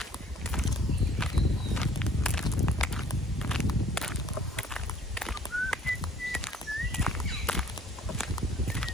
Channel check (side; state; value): both; normal; correlation 0.57